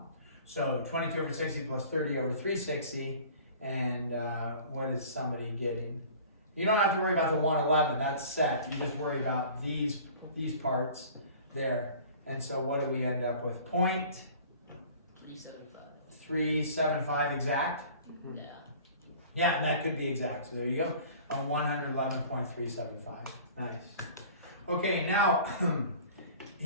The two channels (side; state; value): both; inverted; correlation -0.46